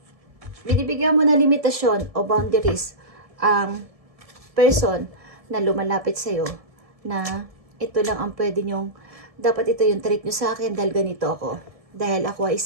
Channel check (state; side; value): late; left; 1.7 ms